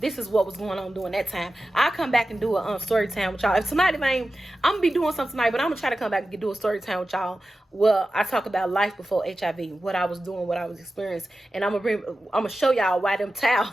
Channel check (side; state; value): both; normal; correlation 0.94